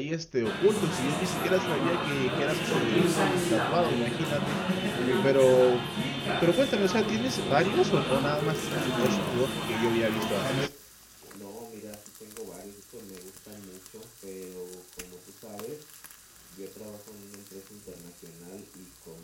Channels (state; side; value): identical; both; correlation 1.00